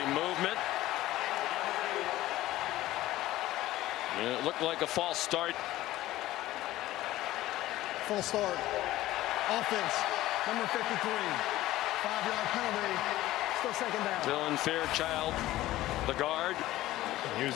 Movement. And it looked like a false start. Full start. Offense. Number 53. 5-yard penalty. Still second down. Dylan Fairchild, the guard. He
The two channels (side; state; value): right; quieter; 15.8 dB